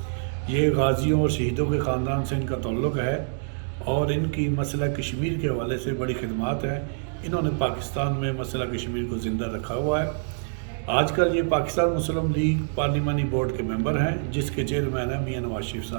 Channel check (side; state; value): left; silent; digital silence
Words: ये गाज़ियों और शहीदों के ख़ानदान से इनका ताल्लुक़ है और इनकी मसला कश्मीर के हवाले से बड़ी खिदमात है। इन्होंने पाकिस्तान में मसला कश्मीर को ज़िंदा रखा हुआ है। आजकल ये पाकिस्तान मुस्लिम लीग पार्लिमानी बोर्ड के मेंबर हैं, जिसके चेयरमैन हैं मियां नवाज शरीफ